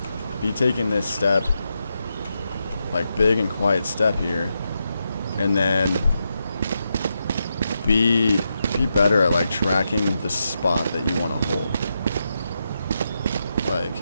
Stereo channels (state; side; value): inverted; both; correlation -0.85